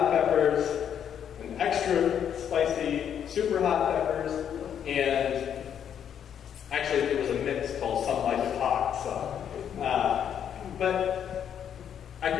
peppers, and extra spicy, super hot peppers, and actually it was a mix called Some Like It Hot. But I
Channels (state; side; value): quieter; right; 8.8 dB